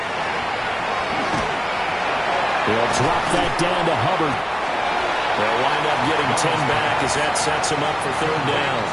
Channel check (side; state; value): both; identical; correlation 1.00